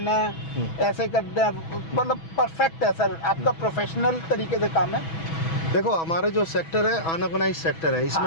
है, ऐसे करना है। मतलब परफेक्ट है सर, आपका प्रोफेशनल तरीके से काम है। देखो हमारा जो सेक्टर है अनऑर्गेनाइज सेक्टर है,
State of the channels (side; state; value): right; late; 6.1 ms